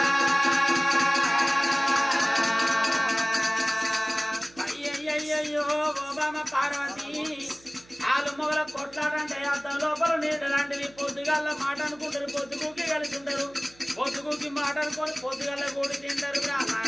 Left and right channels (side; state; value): right; noise; hum, 26 dB below the sound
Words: అయ్యయ్యో ఓబామ పార్వతి వాళ్ళు మొగల కొట్లాడంటే అర్థం లోపల నీళ్ళు లాంటివి పొద్దుగాల మాట అనుకుంటారు పొద్దుగుకి కలిసి ఉంటారు పొద్దుగుకి మాట అనుకొని పొద్దుగాల కూడి తింటారు